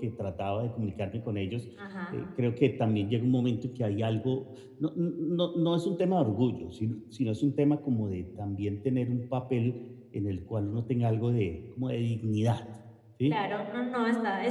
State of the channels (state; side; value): identical; both; correlation 1.00